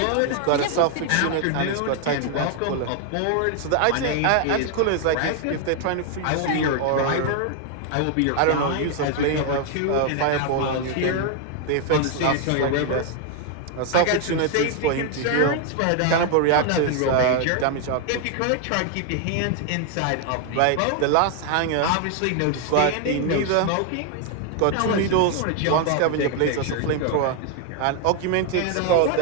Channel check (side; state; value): both; different; correlation 0.00